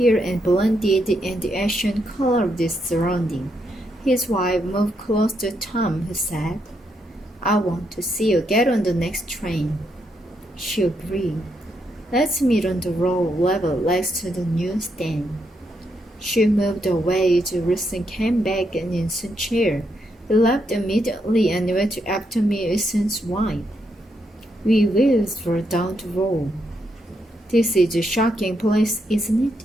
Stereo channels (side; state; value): both; normal; correlation 0.79